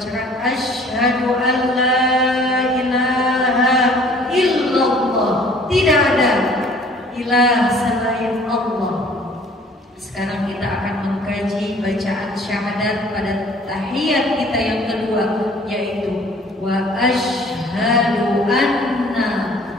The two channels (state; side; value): normal; both; correlation 0.53